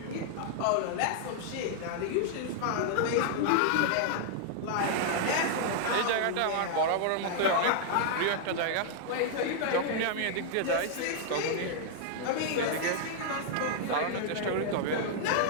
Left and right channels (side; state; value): both; different; correlation -0.01